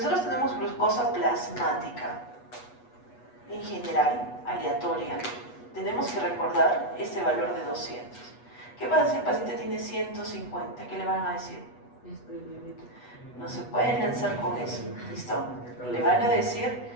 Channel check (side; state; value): right; late; 8.2 ms